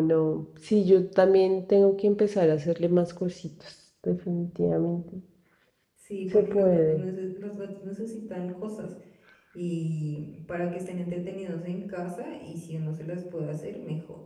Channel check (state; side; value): identical; both; correlation 1.00